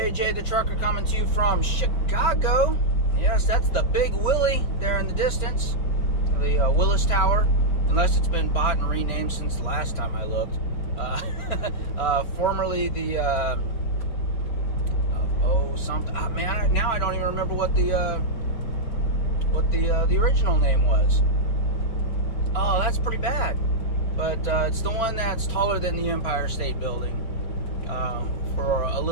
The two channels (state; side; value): late; right; 4.4 ms